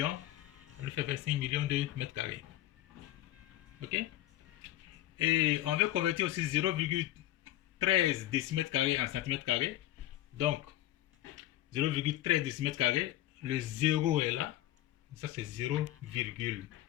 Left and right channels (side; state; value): right; quieter; 14.5 dB